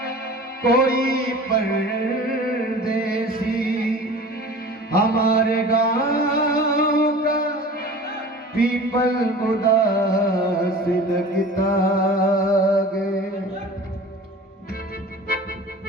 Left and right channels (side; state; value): both; normal; correlation 0.40